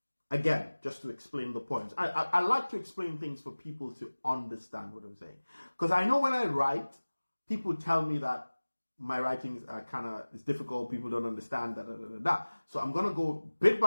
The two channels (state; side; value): inverted; both; correlation -1.00